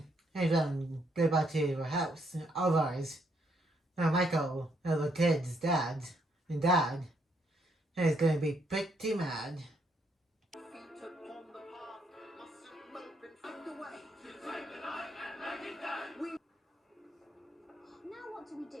and go back to her house. Otherwise, Michael, the kid's dad, is going to be pretty mad. Feet upon the path, mustn't mope and find the way.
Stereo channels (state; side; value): normal; both; correlation 0.73